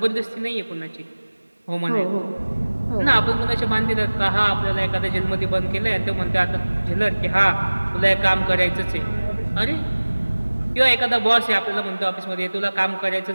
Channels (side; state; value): both; inverted; correlation -1.00